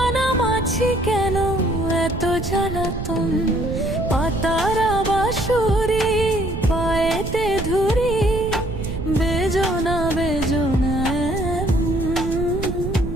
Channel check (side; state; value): right; noise; rumble, 5 dB below the sound